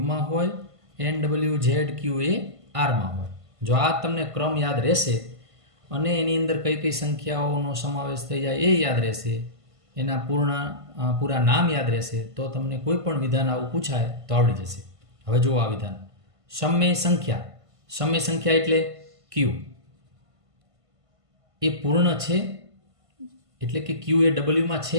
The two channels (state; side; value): late; left; 1.5 ms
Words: હોય, એન ડબલ્યુ ઝેડ ક્યુ એ આરમાં હોય. જો આ તમને ક્રમ યાદ રહેશે અને એની અંદર કઈ કઈ સંખ્યાઓનો સમાવેશ થઈ જાય એ યાદ રહેશે, એના પૂરા નામ યાદ રહેશે, તો તમને કોઈ પણ વિધાન આવું પૂછાય તો આવડી જશે. હવે જુઓ આ વિધાન, સમય સંખ્યા એટલે ક્યુ એ પૂર્ણ છે, એટલે કે ક્યુ એ ડબલ્યુમાં